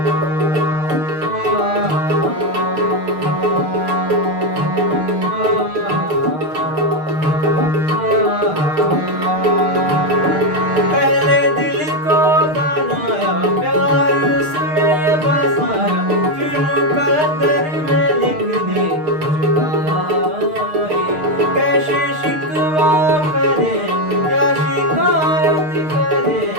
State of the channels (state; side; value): late; left; 6.5 ms